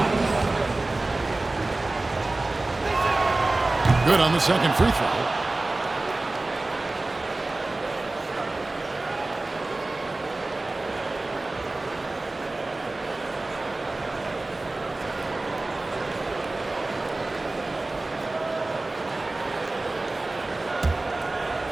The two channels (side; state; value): left; quieter; 3.0 dB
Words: Good on the second free throw.